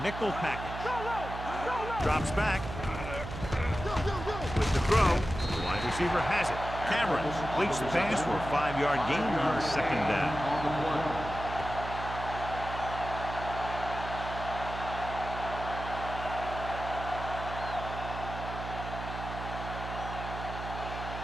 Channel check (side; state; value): right; noise; hum, 8 dB below the sound